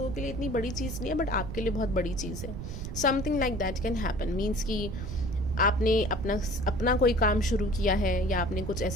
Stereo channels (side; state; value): right; noise; rumble, 7 dB below the sound